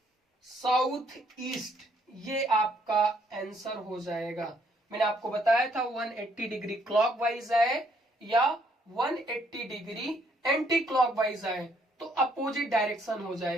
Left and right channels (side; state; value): both; normal; correlation 0.68